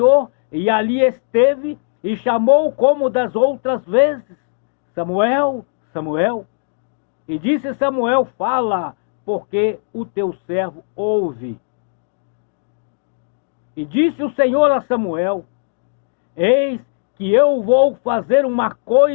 e ali esteve e chamou como das outras vezes: Samuel, Samuel. E disse Samuel: fala, porque o teu servo ouve. E disse o Senhor a Samuel: eis que eu vou fazer uma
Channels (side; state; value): right; silent; digital silence